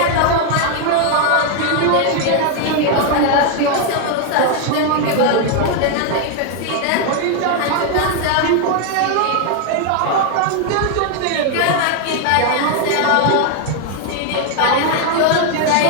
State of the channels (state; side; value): different; both; correlation 0.01